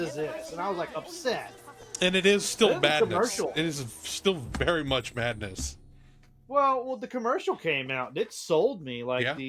this? And I was like upset. And it is And still then the madness. commercial. It is still very much madness. Well, the commercial came out. It sold me. Like Yeah.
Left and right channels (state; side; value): identical; both; correlation 1.00